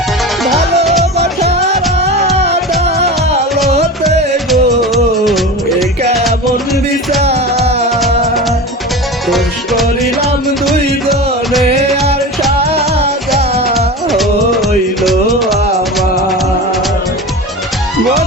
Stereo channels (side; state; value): both; normal; correlation 0.29